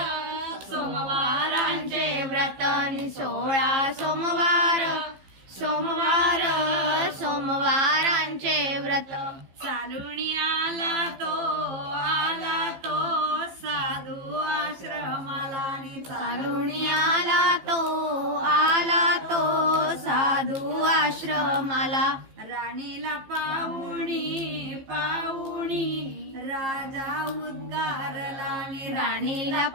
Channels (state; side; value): late; left; 15 ms